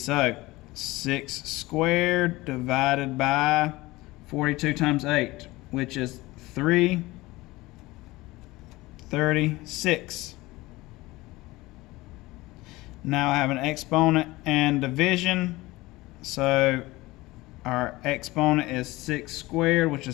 So 6 squared divided by 42 times 8, which is 336. Now I have an exponent and division. So our exponent is 6 squared, which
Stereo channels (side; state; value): right; quieter; 20.1 dB